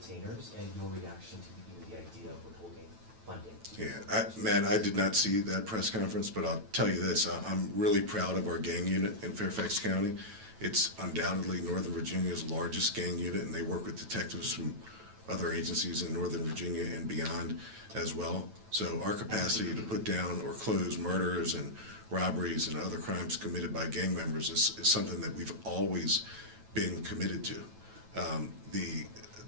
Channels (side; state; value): left; late; 9.1 ms